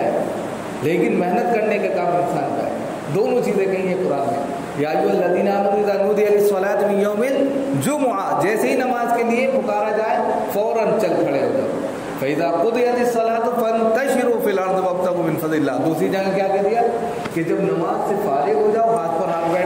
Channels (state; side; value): identical; both; correlation 1.00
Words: لیکن محنت کرنے کا کام انسان کا ہے. دونوں چیزیں کہیں ہیں قرآن میں. یا ایھا الذین آمنوا اذا نودی للصلاۃ من یوم الجمعہ، جیسے ہی نماز کے لیے پکارا جائے فوراً چل کھڑے ہو جاؤ. فَإِذَا قُضِيَتِ الصَّلَاةُ فَانتَشِرُوا فِي الْأَرْضِ وَابْتَغُوا مِن فَضْلِ اللَّهِ. دوسری جگہ کیا کہہ دیا کہ جب نماز سے فارغ ہو جاؤ ہاتھ پر ہاتھ